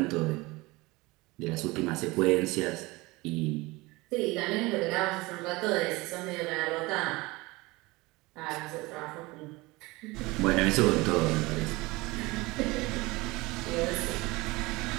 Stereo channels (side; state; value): left; quieter; 22.4 dB